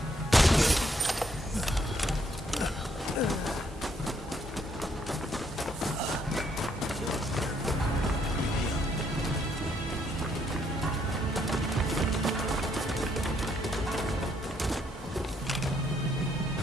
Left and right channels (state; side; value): normal; both; correlation 0.71